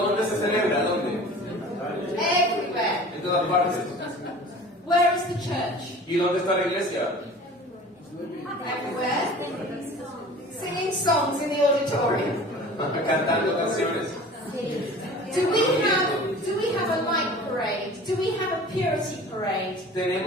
se celebra? ¿Dónde? Everywhere. En todas partes. Where is the church? ¿Y dónde está la iglesia? Everywhere. Singing songs in the auditorium. Cantando canciones. Do we have a light parade? Do we have a purity parade?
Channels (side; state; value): both; normal; correlation 0.42